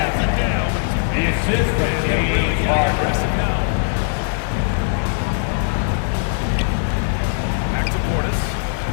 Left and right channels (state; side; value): silent; right; 57 dB below the other